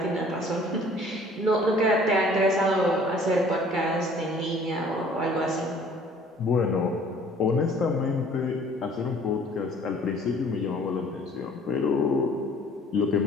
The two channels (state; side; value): normal; both; correlation 0.54